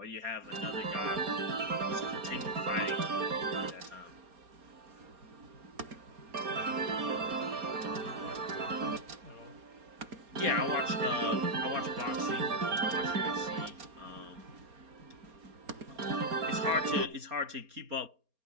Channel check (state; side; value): late; left; 4.3 ms